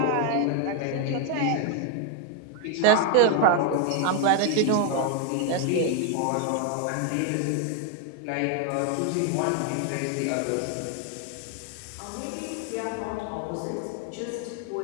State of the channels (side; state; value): both; different; correlation 0.01